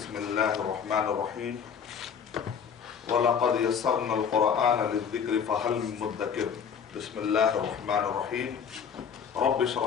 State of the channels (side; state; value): right; quieter; 7.2 dB